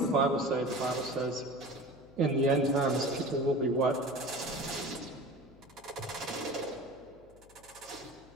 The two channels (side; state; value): left; noise; hum, 25 dB below the sound